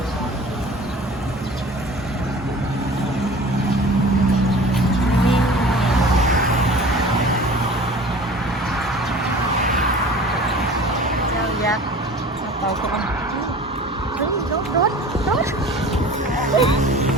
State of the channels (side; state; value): both; normal; correlation 0.42